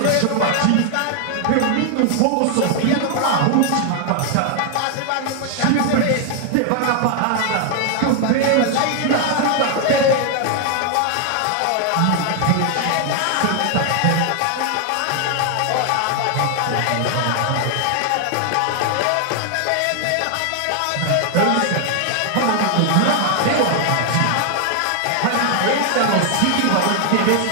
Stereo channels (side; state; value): both; different; correlation 0.00